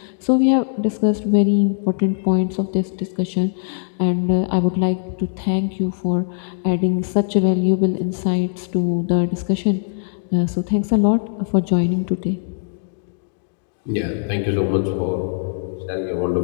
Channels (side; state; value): right; silent; 65 dB below the other